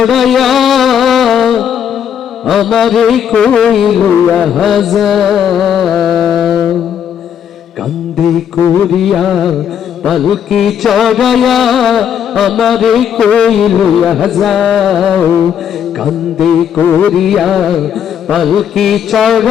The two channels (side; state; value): right; quieter; 8.7 dB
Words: আমারে কই লইয়া যাও। কান্দে করিয়া পালকি চড়াইয়া আমারে কই লইয়া যাও। কান্দে করিয়া পালকি